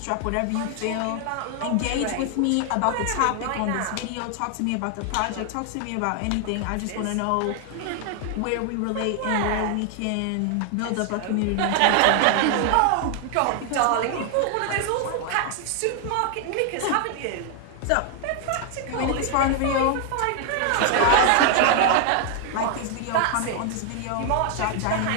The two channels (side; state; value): both; different; correlation 0.00